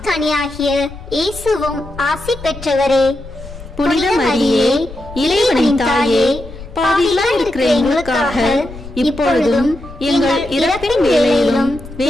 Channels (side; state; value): left; noise; rumble, 15 dB below the sound